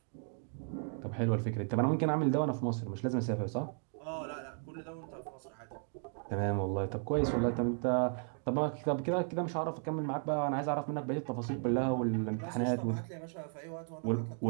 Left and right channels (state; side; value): silent; left; 54 dB below the other